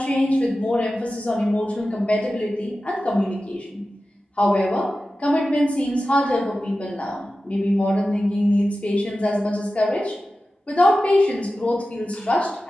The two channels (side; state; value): both; normal; correlation 0.94